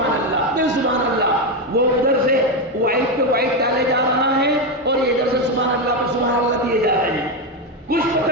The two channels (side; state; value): both; normal; correlation 0.09